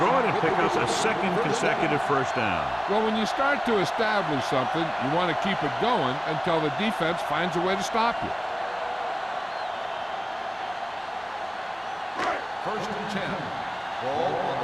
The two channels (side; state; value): both; identical; correlation 1.00